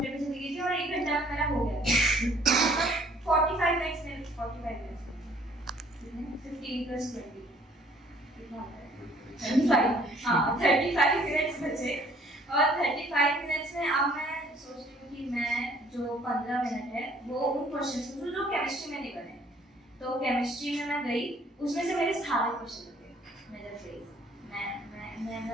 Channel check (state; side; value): normal; both; correlation 0.59